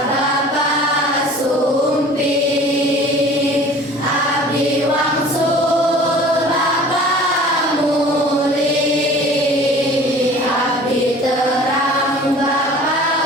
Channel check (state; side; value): normal; both; correlation 0.46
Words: Bapak Sumpi, abdi wangsul Bapak Muli, abdi terang